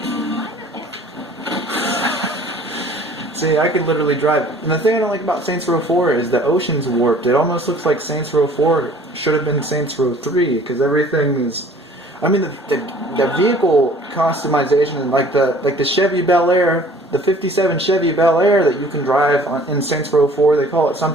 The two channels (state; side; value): normal; both; correlation 0.52